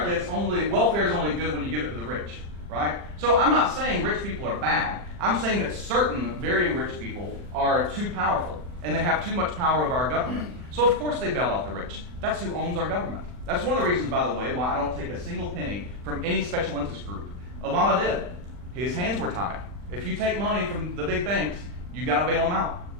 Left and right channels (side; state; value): left; late; 40 ms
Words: welfare is only good when you give it to the rich, right? So I'm not saying rich people are bad. I'm saying that certain very rich people are too powerful and they have too much power over our government. So of course they bail out the rich. That's who owns our government. That's one of the reasons, by the way, why I don't take a single penny from any special interest group. Obama did. His hands were tied. If you take money from the big banks, you got to bail them out.